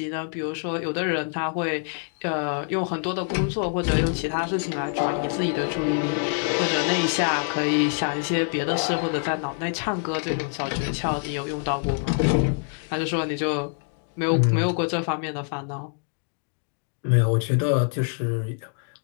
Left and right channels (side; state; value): right; silent; 61 dB below the other